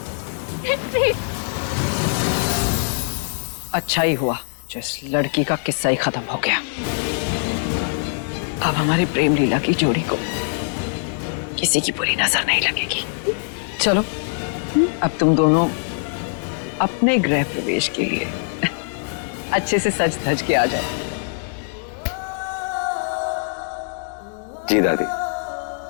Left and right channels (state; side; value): silent; right; 64 dB below the other